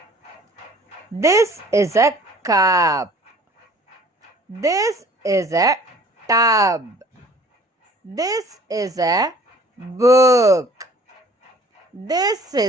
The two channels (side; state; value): both; normal; correlation 0.51